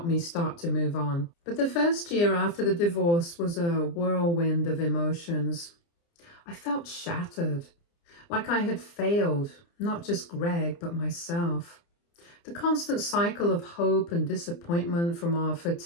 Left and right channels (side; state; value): right; late; 29 ms